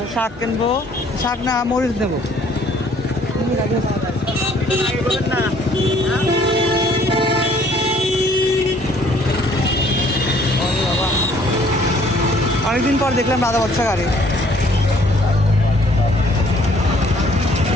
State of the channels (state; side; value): normal; both; correlation 0.60